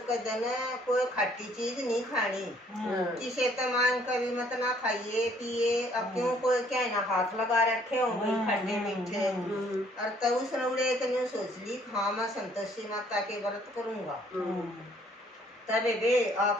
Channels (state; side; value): normal; both; correlation 0.62